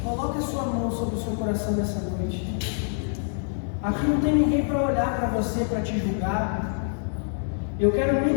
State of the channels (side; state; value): right; silent; 61 dB below the other